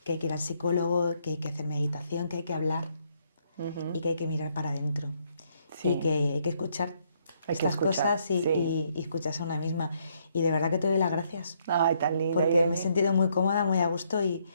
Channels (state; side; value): inverted; both; correlation -0.71